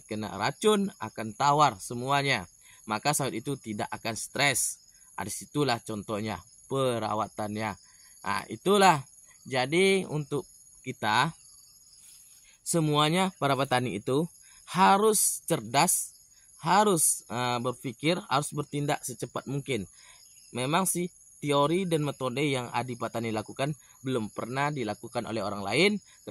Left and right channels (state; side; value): identical; both; correlation 1.00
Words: racun akan tawar semuanya. Maka sawit itu tidak akan stres. Disitulah contohnya perawatannya. Itulah. Jadi untuk kita semuanya para petani itu harus cerdas, harus berpikir, harus bertindak secepat mungkin. Memang sih teori dan metode yang Adi Petani lakukan belum pernah dilakukan oleh orang lain,